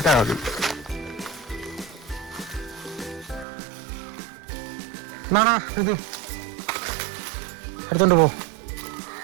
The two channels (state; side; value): drops out; left; at 3.5 s